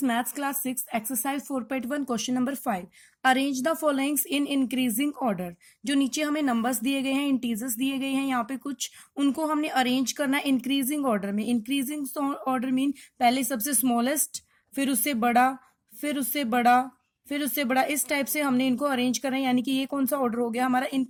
maths class 6 exercise 4.1 question number 5 arrange the followings in increasing order. जो नीचे हमें नंबर्स दिए गए हैं, इंटीजर्स दिए गए हैं, यहाँ पे कुछ उनको हमने अरेंज करना है इंक्रीजिंग ऑर्डर में। इंक्रीजिंग ऑर्डर मीन पहले सबसे स्मॉलेस्ट, फिर उससे बड़ा, फिर उससे बड़ा, फिर उससे बड़ा, इस टाइप से हमने इनको अरेंज करना है। यानी कि ये कौन सा ऑर्डर हो गया हमारा?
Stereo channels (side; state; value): both; identical; correlation 1.00